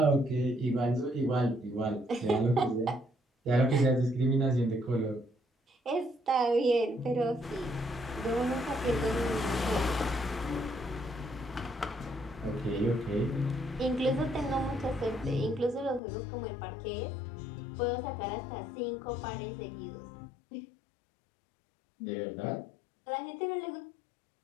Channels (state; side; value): drops out; right; at 16.0 s